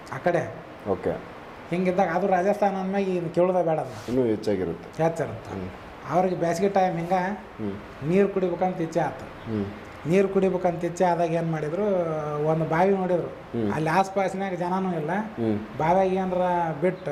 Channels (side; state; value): both; identical; correlation 1.00